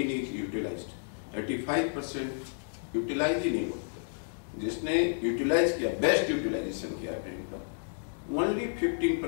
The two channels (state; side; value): silent; right; digital silence